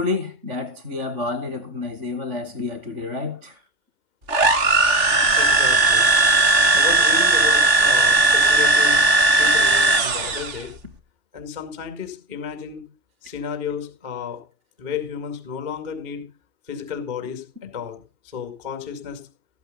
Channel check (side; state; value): left; late; 3.4 ms